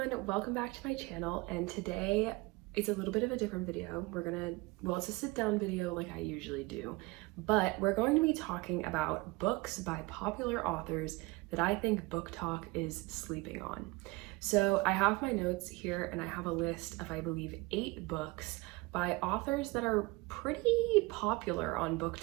welcome back to my channel, and today it's a little bit of a different video. It's a sit down video like I usually do, but we're going to be talking about books by popular authors that I think Booktok is sleeping on. So I have my notes here and I have a list of, I believe, 8 books by authors that are pretty popular on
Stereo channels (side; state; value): left; quieter; 23.7 dB